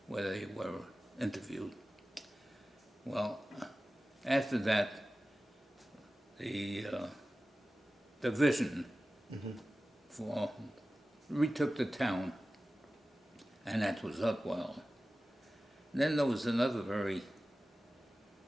where they were interviewed. Well, after that, the division retook the town, and that was Upwell. Then there was another very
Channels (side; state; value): both; normal; correlation 0.95